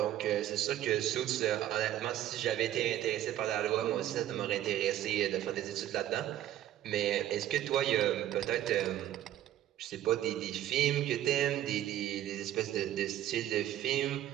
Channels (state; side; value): quieter; left; 12.5 dB